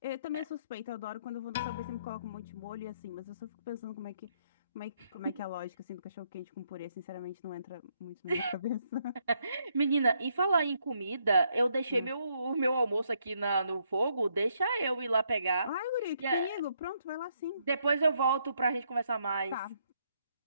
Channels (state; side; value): inverted; both; correlation -0.73